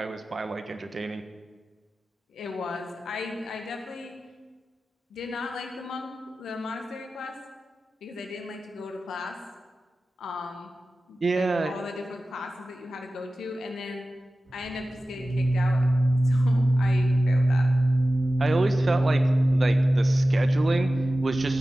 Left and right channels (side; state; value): both; normal; correlation 0.95